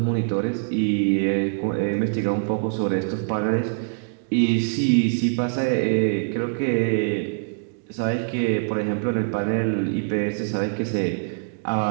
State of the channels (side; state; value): left; silent; digital silence